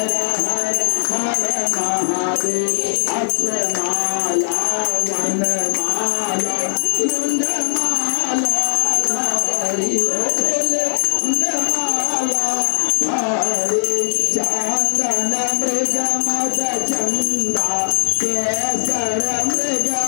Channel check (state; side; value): silent; right; 55 dB below the other